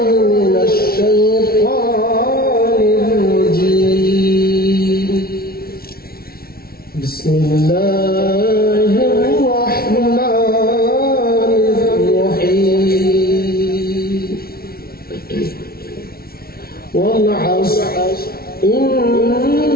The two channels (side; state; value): right; late; 0.44 ms